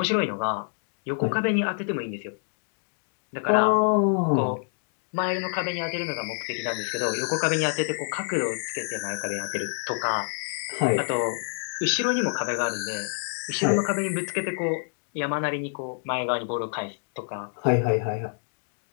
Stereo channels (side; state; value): right; silent; digital silence